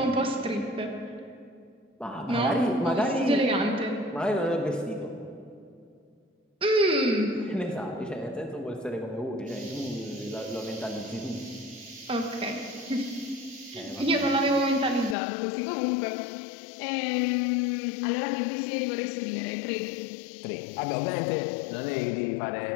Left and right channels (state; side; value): drops out; right; at 15.2 s